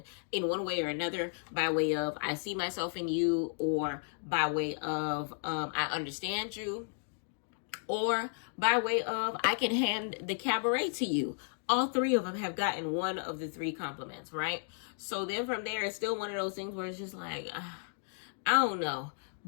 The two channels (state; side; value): silent; right; digital silence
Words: in one way or another, by way of I see myself in you, or by way of I understand you, or by way of I can hand the cabaret to you. All 3 of them have gotten one of the 3 compliments, right? So then from there, it's still one of those things where it's just like, I don't know.